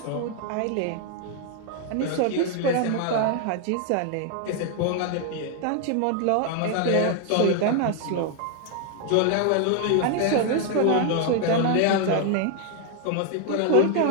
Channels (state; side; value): different; both; correlation 0.00